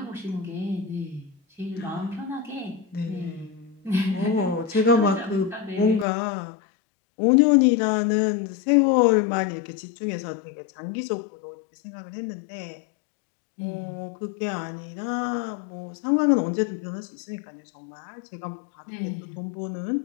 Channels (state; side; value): drops out; right; at 6.1 s